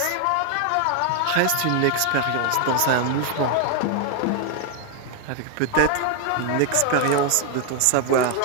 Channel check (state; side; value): different; both; correlation 0.00